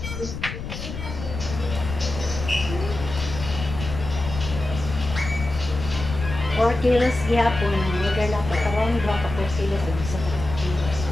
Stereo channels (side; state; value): left; noise; rumble, 8 dB below the sound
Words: Or kilos gihapon, order na pa karon 2 ka 4 kilos sa kilos.